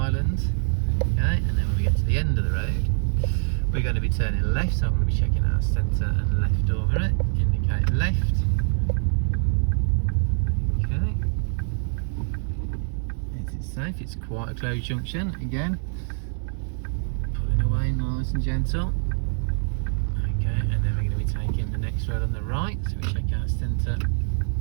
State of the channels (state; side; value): silent; left; 62 dB below the other